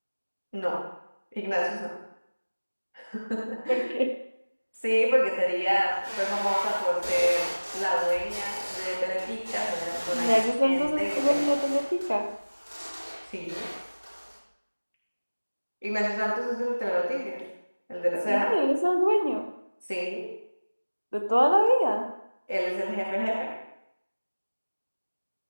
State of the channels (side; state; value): both; inverted; correlation -1.00